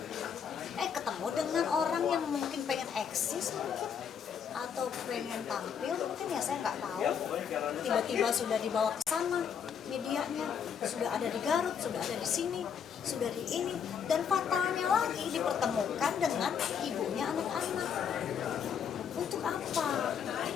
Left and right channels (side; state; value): right; quieter; 7.5 dB